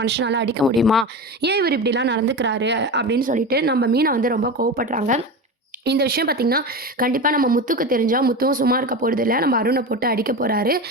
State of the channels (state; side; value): normal; both; correlation 0.25